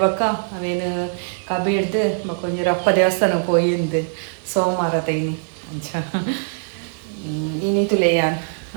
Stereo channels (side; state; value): left; silent; 63 dB below the other